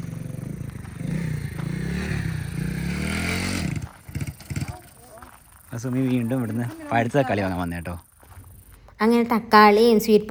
സുമി വീണ്ടും ഇവിടുന്ന് പഴുത്ത തക്കാളി വാങ്ങാൻ വന്നേ കേട്ടോ. അങ്ങനെ തക്കാളിയും സ്വീറ്റ്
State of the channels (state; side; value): identical; both; correlation 1.00